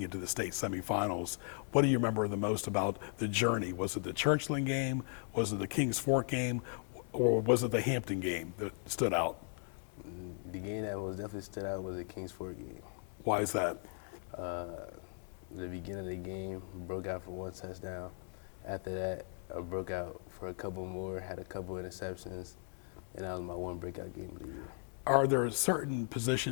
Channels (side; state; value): right; silent; 53 dB below the other